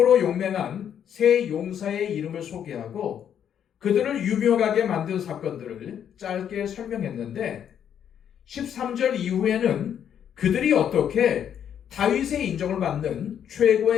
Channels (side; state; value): right; quieter; 9.0 dB